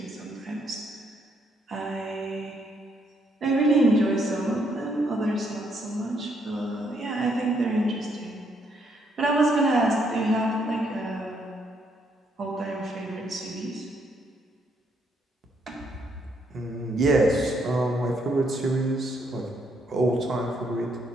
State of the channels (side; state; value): both; normal; correlation 0.73